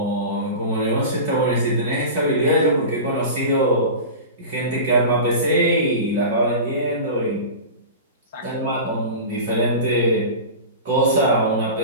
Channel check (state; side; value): inverted; both; correlation -0.30